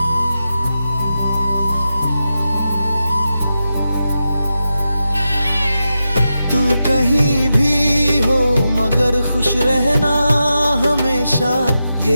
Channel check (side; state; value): both; inverted; correlation -0.90